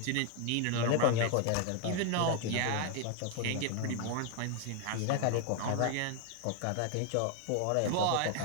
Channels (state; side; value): different; both; correlation 0.01